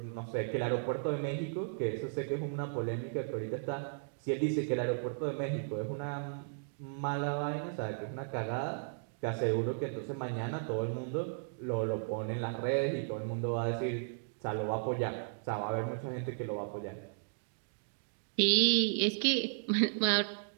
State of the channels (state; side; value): silent; left; digital silence